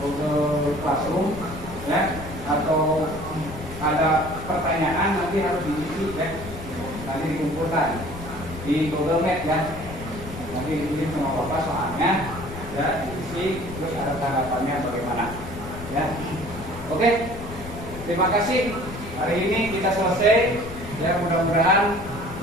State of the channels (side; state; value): left; noise; rumble, 12 dB below the sound